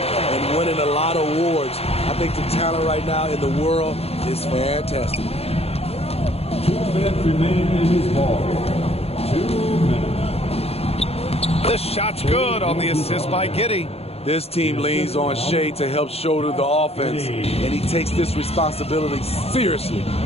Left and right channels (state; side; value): late; right; 0.29 ms